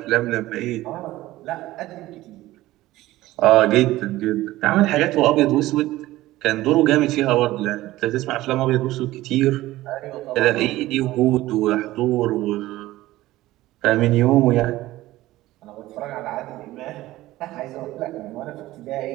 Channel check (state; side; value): quieter; left; 16.7 dB